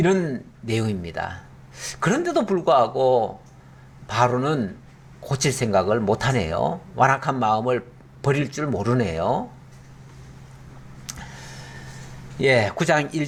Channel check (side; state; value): both; identical; correlation 1.00